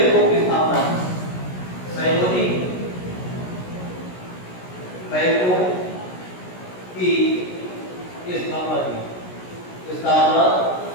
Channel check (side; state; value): right; late; 16 ms